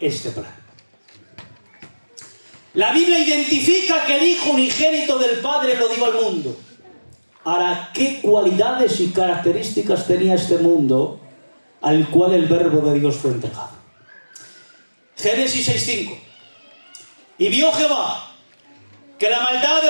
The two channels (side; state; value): both; inverted; correlation -1.00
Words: plan. La Biblia identifica que el Hijo unigénito del Padre lo dio al mundo. Ahora, ¿qué cualidades y características tenía este mundo al cual el Verbo de Dios fue entregado? Génesis 6:5. Y vio Jehová que la maldad